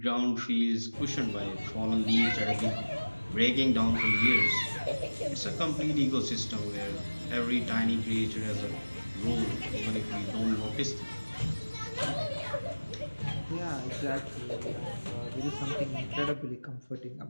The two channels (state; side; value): inverted; both; correlation -1.00